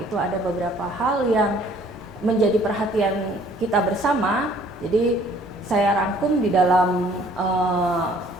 ada beberapa hal yang menjadi perhatian kita bersama. Jadi saya rangkum di dalam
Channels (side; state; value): both; normal; correlation 0.58